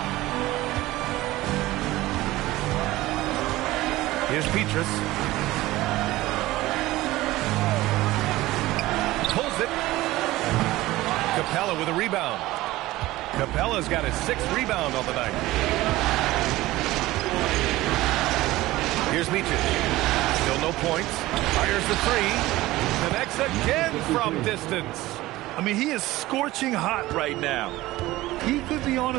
Here's Petrus. Pulls it. Capella with a rebound. Capella's got his 6th rebound on the night. Here's Micic. Still no points. Fires the 3. Connects again from distance. I mean, he is scorching hot right now. He could be on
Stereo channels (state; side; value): quieter; left; 17.7 dB